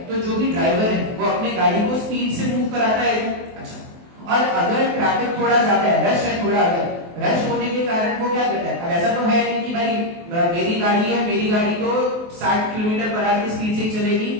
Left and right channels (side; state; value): left; late; 23 ms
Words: तो जो भी ड्राइवर है वो अपने गाड़ी को स्पीड से मूव कराता है। अच्छा, और अगर ट्रैफिक थोड़ा ज्यादा है, रश है थोड़ा, अगर रश होने के कारण वो क्या करता है, अब ऐसा तो है नहीं कि भाई मेरी गाड़ी है, मेरी गाड़ी तो 60 किलोमीटर पर आवर की स्पीड से ही चलेगी,